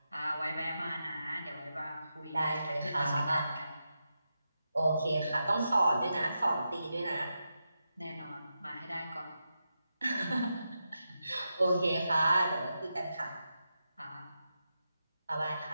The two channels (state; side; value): inverted; both; correlation -0.88